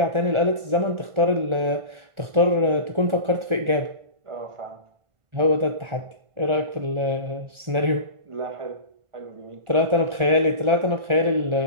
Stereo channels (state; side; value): late; left; 1.4 ms